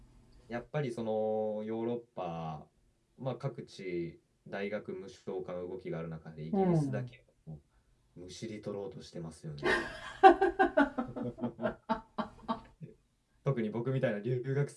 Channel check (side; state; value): both; identical; correlation 1.00